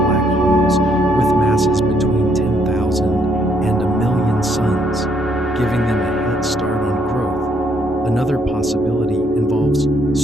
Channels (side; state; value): both; normal; correlation 0.71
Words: holes with masses between 10,000 and a million suns, giving them a head start on growth. Another possibility involves